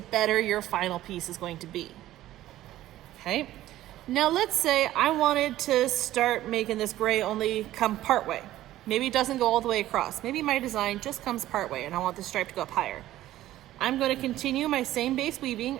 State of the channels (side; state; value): left; quieter; 14.4 dB